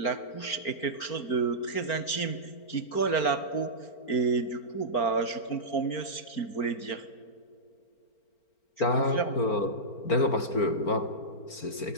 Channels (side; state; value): right; late; 4.4 ms